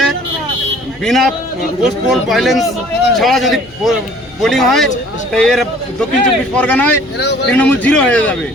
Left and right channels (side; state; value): left; noise; hum, 26 dB below the sound